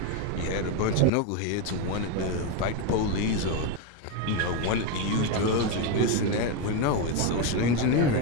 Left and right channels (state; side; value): different; both; correlation 0.03